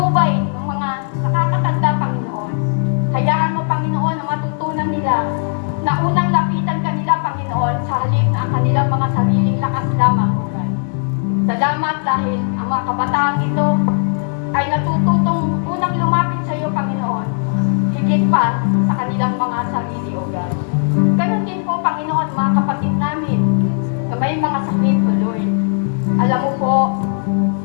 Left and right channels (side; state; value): right; silent; 60 dB below the other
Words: ng mga nakakatanda, Panginoon. Hayaan mo, Panginoon, na matutunan nila na unang lapitan kanila, Panginoon, sa halip na ang kanilang mga sariling lakas lamang, O God. Salamat dahil ang mga kabataang ito ay natututong unang lumapit sa iyo, Panginoon, higit pa sa kanilang mga sarili, O God. Ganon din po, Panginoon, mga kapatid namin na may mga sakit, O Lord. Alam mo po